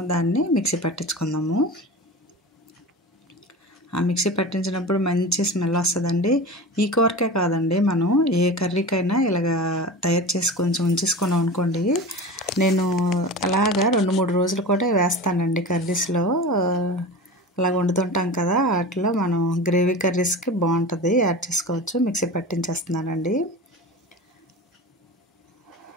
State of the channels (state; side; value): normal; both; correlation 0.31